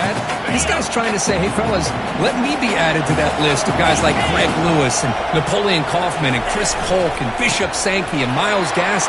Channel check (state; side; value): identical; both; correlation 1.00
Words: This guy's trying to say, hey, fellas, let me be added to that list of guys like Greg Lewis and Napoleon Kaufman and Chris Polk and Bishop Sankey and Myles